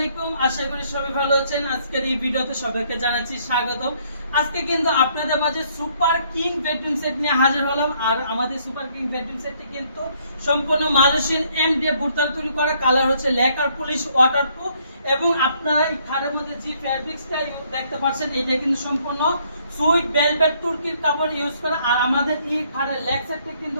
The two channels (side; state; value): both; inverted; correlation -0.67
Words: আশা করি সবাই ভালো আছেন। আজকের এই ভিডিওতে সবাইকে জানাচ্ছি স্বাগতম। আজকে কিন্তু আপনাদের মাঝে সুপার কিং বেডরুম সেট নিয়ে হাজির হলাম। আর আমাদের সুপার কিং বেডরুম সেটটি কিন্তু সম্পূর্ণ মালয়েশিয়ান এমডিএফ বুরতাল তৈরি করা, কালার হচ্ছে লেকার পলিশ ওয়াটারপ্রুফ। এবং আপনারা এই খাটের মধ্যে যে ফ্যাব্রিক্সটা দেখতে পাচ্ছেন, এটা কিন্তু সম্পূর্ণ সুইট ভেলভেট তুর্কির কাপড় ইউজ করা। আর আমাদের এই খাটের লেগ সেটটি